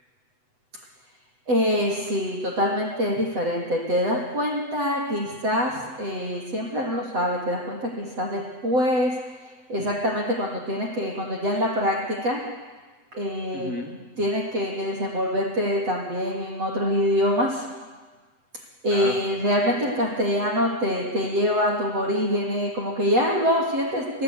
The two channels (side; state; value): left; late; 8.0 ms